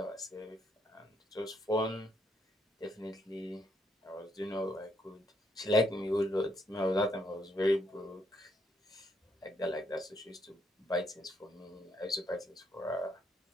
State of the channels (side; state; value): both; normal; correlation 0.74